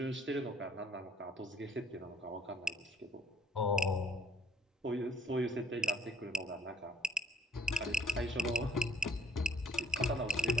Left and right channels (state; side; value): normal; both; correlation 0.60